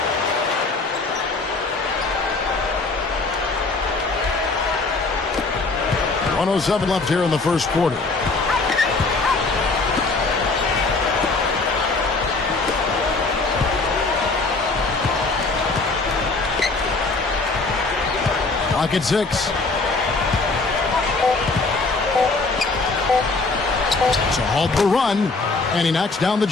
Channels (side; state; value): right; quieter; 3.7 dB